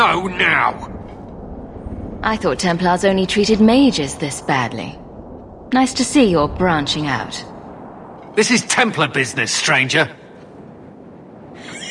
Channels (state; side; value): identical; both; correlation 1.00